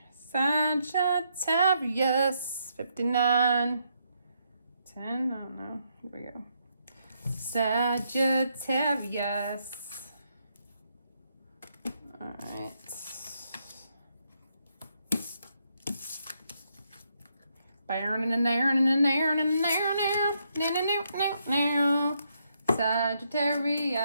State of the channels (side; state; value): both; inverted; correlation -0.77